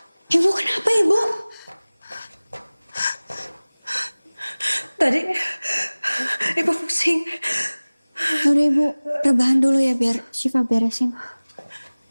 Ibu kenapa, Ibu? Tadi Ibu pusing. Udah Ibu, rebahan dulu ya biar Syifa beresin.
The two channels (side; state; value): both; inverted; correlation -1.00